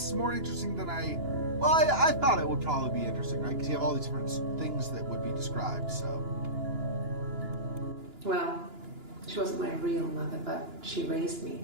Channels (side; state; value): left; late; 2.9 ms